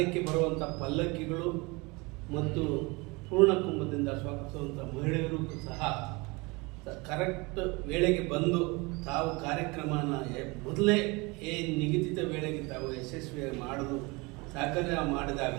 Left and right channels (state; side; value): quieter; left; 26.1 dB